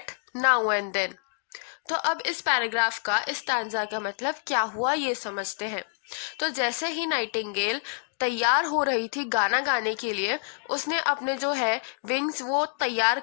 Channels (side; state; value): right; silent; 60 dB below the other